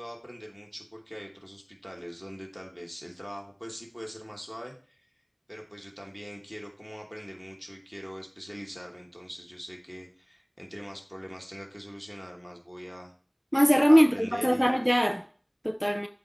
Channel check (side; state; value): both; identical; correlation 1.00